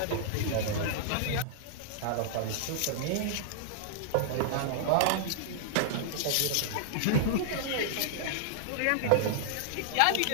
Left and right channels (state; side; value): different; both; correlation -0.01